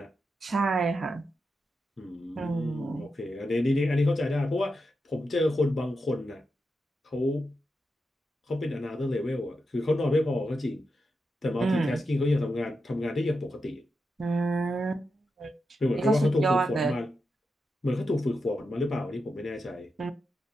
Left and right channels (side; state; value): both; normal; correlation 0.87